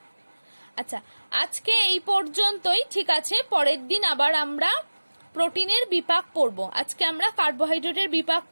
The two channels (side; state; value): both; inverted; correlation -1.00